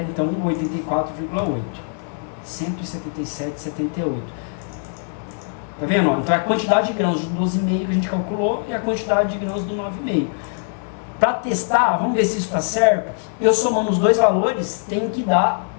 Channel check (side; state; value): right; silent; 64 dB below the other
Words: então 84,8, 177,78. Tá vendo? Então é a quantidade de grãos de 12,5 que a gente calculou e a quantidade de grãos do 9,5. Para testar, vamos ver se isso está certo. Eu somando os dois valores, tem que dar